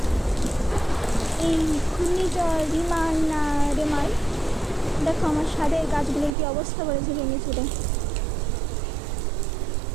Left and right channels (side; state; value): left; drops out; at 6.4 s